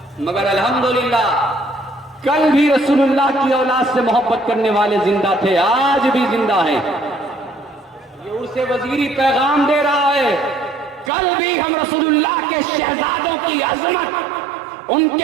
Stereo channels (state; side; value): drops out; left; at 11.1 s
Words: مگر الحمدللہ کل بھی رسول اللہ کی اولاد سے محبت کرنے والے زندہ تھے, آج بھی زندہ ہیں. یہ عرس وزیری پیغام دے رہا ہے, کل بھی ہم رسول اللہ کے شہزادوں کی عظمت, ان